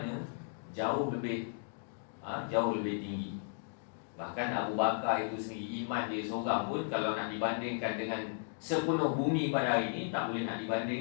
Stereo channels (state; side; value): silent; right; digital silence